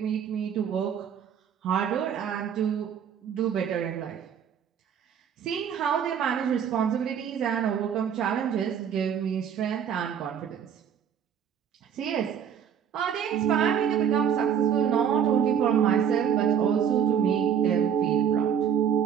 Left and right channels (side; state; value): left; quieter; 8.2 dB